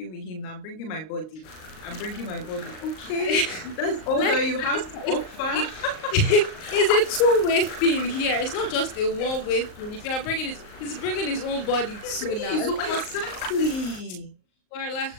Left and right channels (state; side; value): late; right; 38 ms